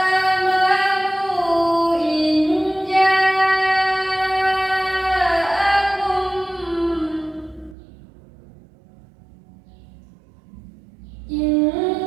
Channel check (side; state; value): left; drops out; at 7.8 s